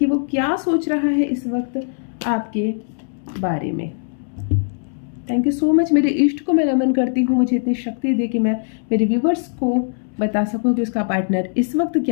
वो क्या सोच रहा है इस वक्त आपके बारे में। थैंक यू सो मच, मेरे इष्ट को मैं नमन करती हूँ, मुझे इतनी शक्ति दे कि मैं मेरे व्यूवर्स को बता सकूँ कि उसका पार्टनर इस वक्त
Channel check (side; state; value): right; silent; 65 dB below the other